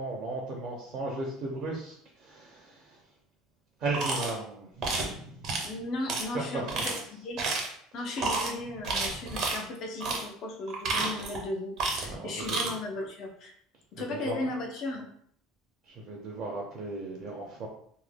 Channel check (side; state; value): both; normal; correlation 0.47